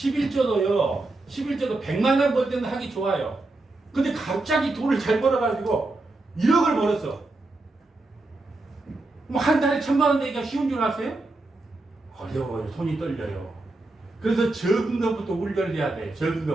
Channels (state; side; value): quieter; left; 3.0 dB